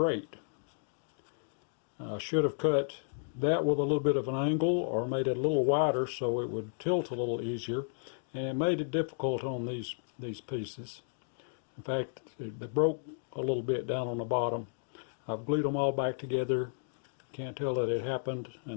I should have cut that with a little bit of an angle, or made it a little wider so it would tilt a little easier, and it made it difficult on these pieces. In fact, they broke a little bit down on the bottom. I've glued them all back together. Can't tell that it happened,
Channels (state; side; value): silent; right; digital silence